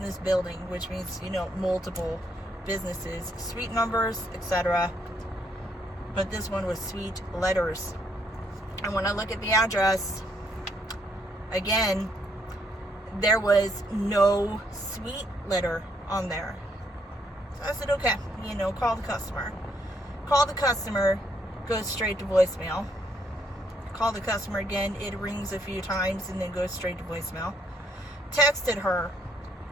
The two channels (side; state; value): both; normal; correlation 0.72